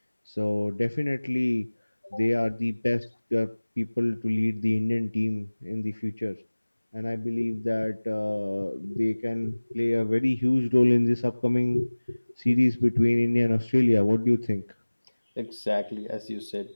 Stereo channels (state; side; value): inverted; both; correlation -1.00